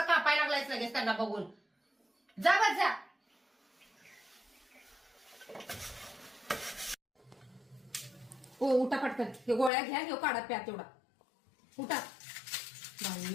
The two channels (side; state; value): right; drops out; at 9.7 s